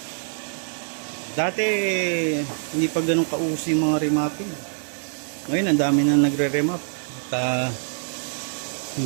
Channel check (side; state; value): left; silent; digital silence